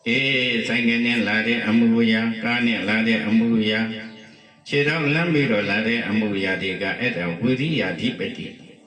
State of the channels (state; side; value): identical; both; correlation 1.00